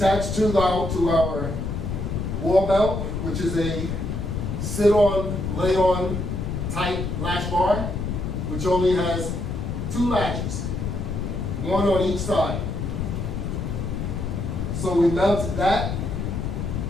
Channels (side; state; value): left; noise; rumble, 3 dB below the sound